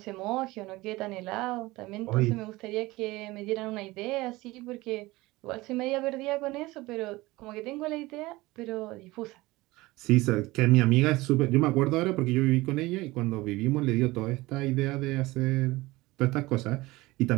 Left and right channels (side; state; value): left; quieter; 20.3 dB